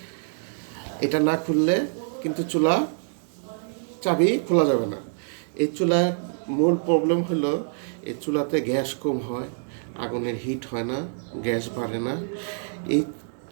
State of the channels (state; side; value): silent; left; digital silence